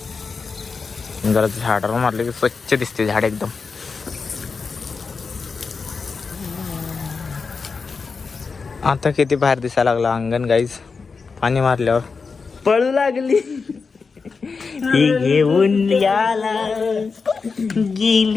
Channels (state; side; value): quieter; right; 4.9 dB